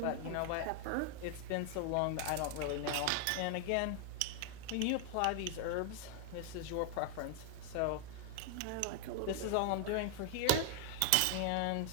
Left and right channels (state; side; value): different; both; correlation 0.00